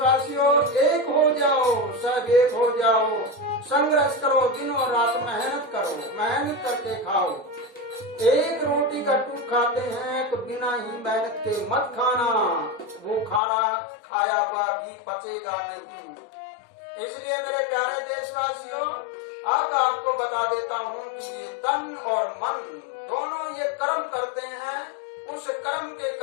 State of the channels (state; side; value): drops out; right; at 13.4 s